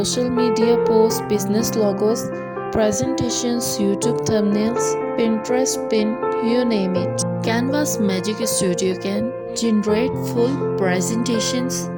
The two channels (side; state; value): both; identical; correlation 1.00